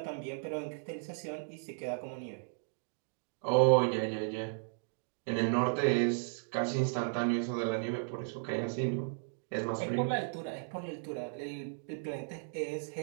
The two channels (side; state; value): left; silent; digital silence